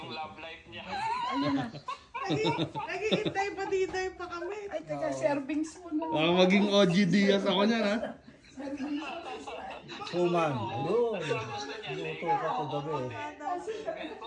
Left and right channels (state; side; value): identical; both; correlation 1.00